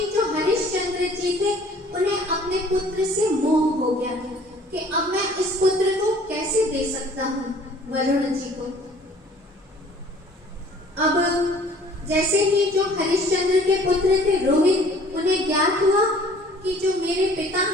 जो हरिश्चंद्र जी थे उन्हें अपने पुत्र से मोह हो गया था कि अब मैं इस पुत्र को कैसे दे सकता हूँ वरुण जी को। अब जैसे ही जो हरिश्चंद्र के पुत्र थे रोहित, उन्हें ज्ञात हुआ कि जो मेरे पिता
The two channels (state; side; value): normal; both; correlation 0.53